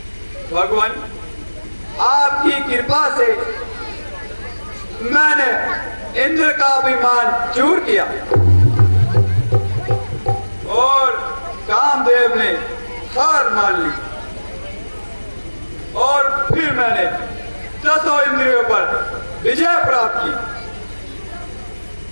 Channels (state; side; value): inverted; both; correlation -1.00